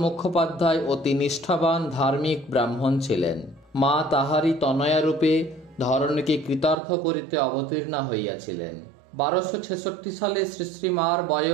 মুখোপাধ্যায় অতি নিষ্ঠাবান ধার্মিক ব্রাহ্মণ ছিলেন। মা তাহারই তনয়া রূপে ধরণীকে কৃতার্থ করিতে অবতীর্ণা হইয়াছিলেন। 1266 সালে শ্রী শ্রী মার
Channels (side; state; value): left; drops out; at 6.8 s